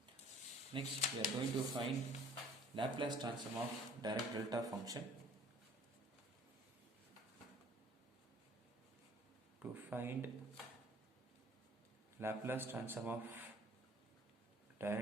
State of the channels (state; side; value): normal; both; correlation 0.53